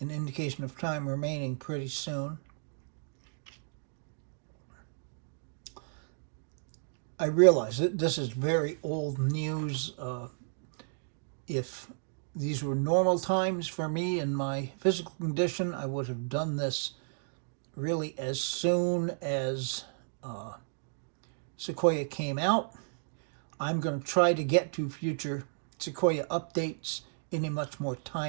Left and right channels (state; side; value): silent; left; digital silence